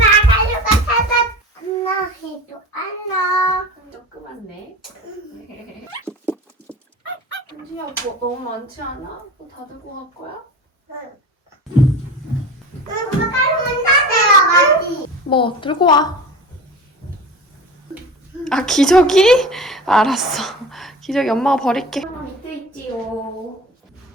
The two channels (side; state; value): both; normal; correlation 0.34